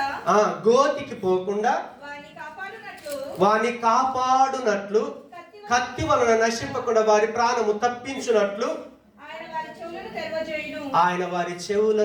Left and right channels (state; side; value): identical; both; correlation 1.00